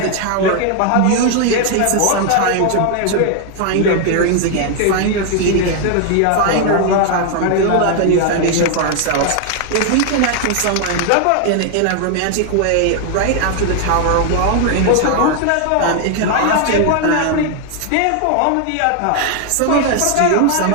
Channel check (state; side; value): different; both; correlation 0.00